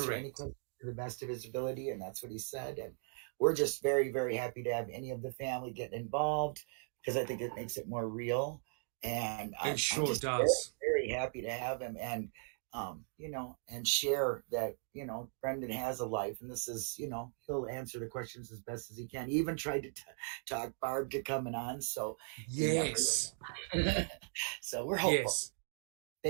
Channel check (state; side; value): silent; left; 52 dB below the other